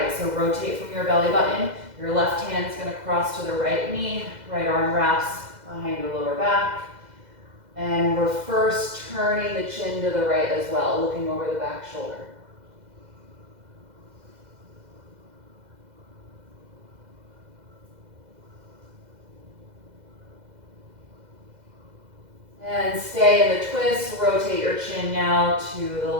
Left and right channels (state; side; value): late; left; 2.0 ms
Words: So rotate from your belly button. Your left hand's gonna cross to the right knee, right arm wraps behind your lower back. And we're first turning the chin to the right as well, looking over the back shoulder. And stay in the twist, rotate your chin now to the